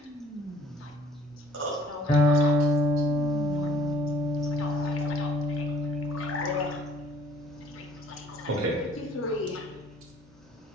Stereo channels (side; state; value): both; normal; correlation 0.56